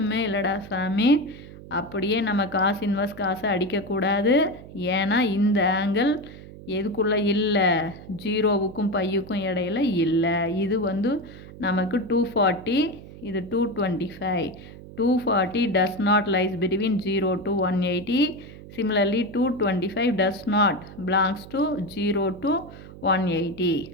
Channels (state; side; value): noise; right; hum, 16 dB below the sound